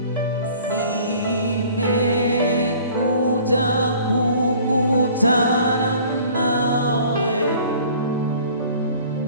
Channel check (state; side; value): inverted; both; correlation -0.50